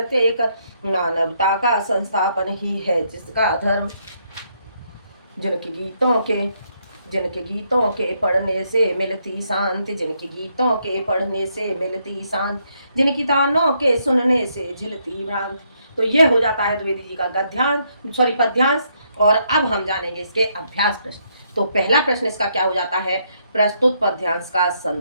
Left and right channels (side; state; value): both; inverted; correlation -0.74